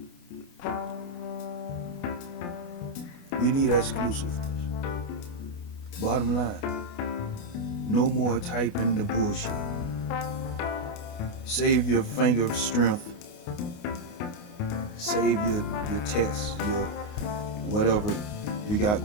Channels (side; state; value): right; late; 29 ms